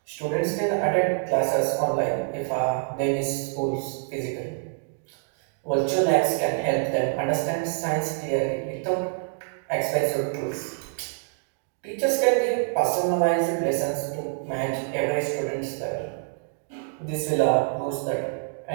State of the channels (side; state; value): left; silent; digital silence